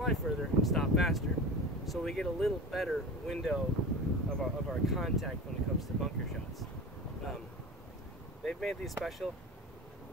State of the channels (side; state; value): both; normal; correlation 0.32